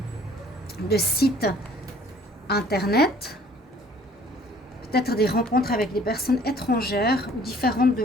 sites internet. Peut-être des rencontres avec des personnes étrangères ou différentes de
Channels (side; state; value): both; normal; correlation 0.55